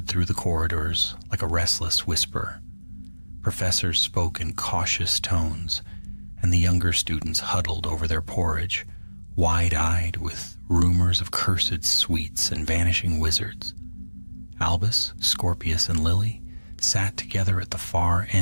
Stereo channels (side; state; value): both; inverted; correlation -1.00